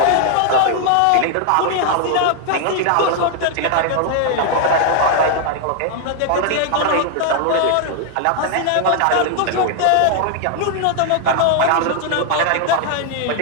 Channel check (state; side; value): different; both; correlation 0.00